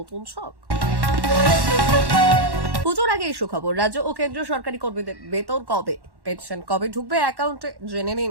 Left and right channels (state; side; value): late; left; 1.1 ms